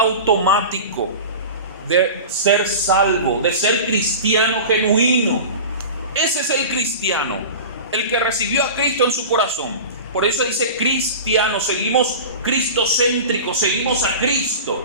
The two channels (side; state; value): both; inverted; correlation -0.32